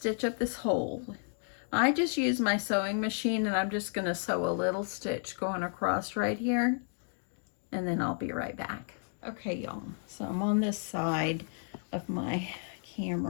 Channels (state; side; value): silent; right; 56 dB below the other